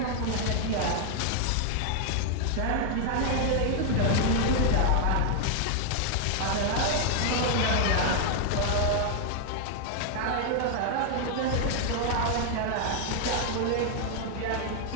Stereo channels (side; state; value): both; different; correlation 0.00